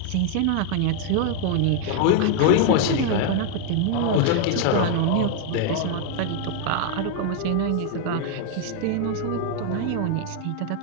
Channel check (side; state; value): both; different; correlation 0.00